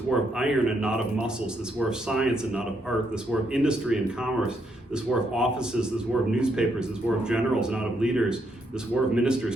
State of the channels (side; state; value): both; normal; correlation 0.76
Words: war of iron and not of muscles, this war of science and not of art, this war of industry and commerce, this war of offices, this war of newspapers, this war of generals and not of leaders, this war of ministers,